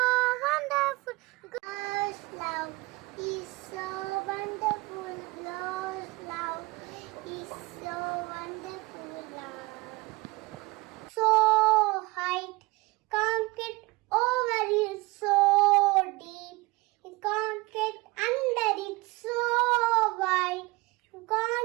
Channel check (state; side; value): quieter; left; 23.2 dB